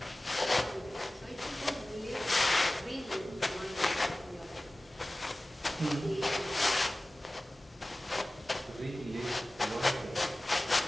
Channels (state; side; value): normal; both; correlation 0.97